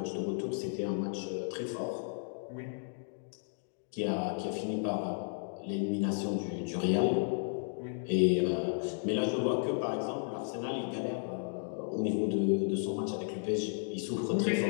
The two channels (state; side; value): silent; right; digital silence